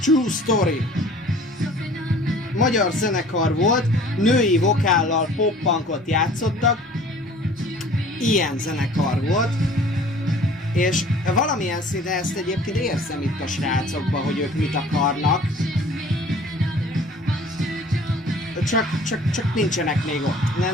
True Story. Magyar zenekar volt, női vokállal pop-punkot játszottak. Ilyen zenekar volt. És valamilyen szinten ezt egyébként érzem itt a srácokban, hogy ők mit akarnak. Csak nincsenek még ott.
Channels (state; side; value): normal; both; correlation 0.49